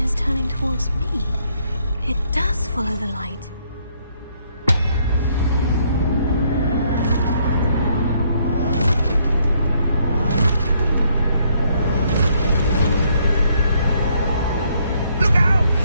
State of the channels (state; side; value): inverted; both; correlation -0.70